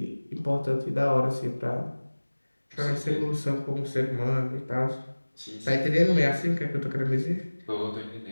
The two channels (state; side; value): inverted; both; correlation -1.00